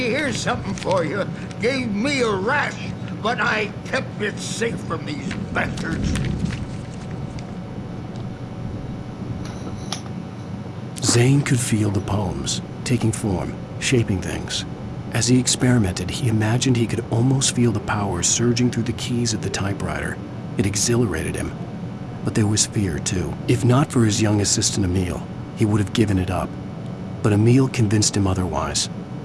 something for you. Gave me a rash, but I kept it safe from these bastards. Zane could feel the poems, taking form, shaping things. As he experimented, he imagined he could almost feel the power surging through the keys of the typewriter. It exhilarated him. But there was fear, too. If not for his young assistant Emil, he would have given it up. But Emil convinced him otherwise.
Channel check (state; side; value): identical; both; correlation 1.00